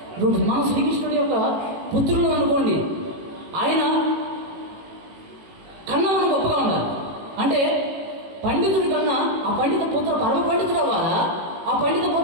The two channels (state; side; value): late; left; 18 ms